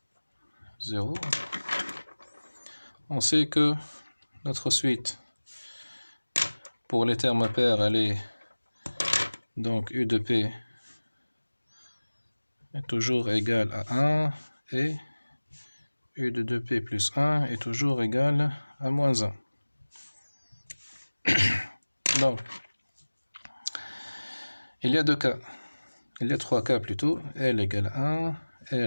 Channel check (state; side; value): inverted; both; correlation -1.00